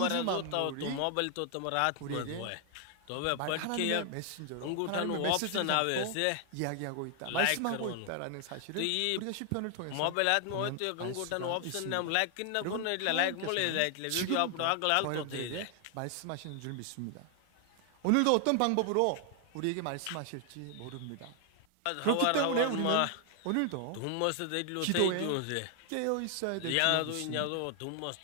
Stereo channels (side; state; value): both; different; correlation 0.00